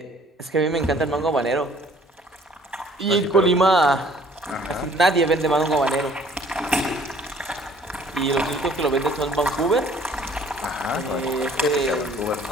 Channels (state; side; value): normal; both; correlation 0.56